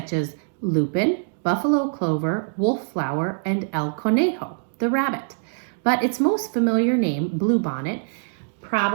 as lupin, buffalo clover, wolf flower, and el conejo, the rabbit. But its most familiar name, bluebonnet,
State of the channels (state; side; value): silent; left; digital silence